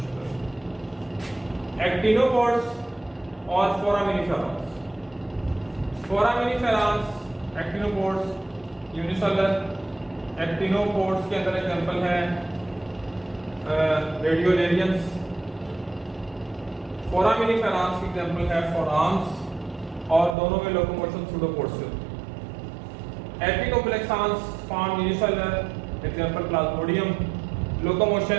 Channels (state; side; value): drops out; left; at 20.4 s